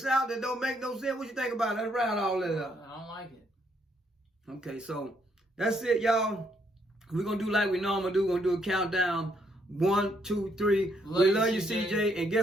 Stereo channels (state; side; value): normal; both; correlation 0.72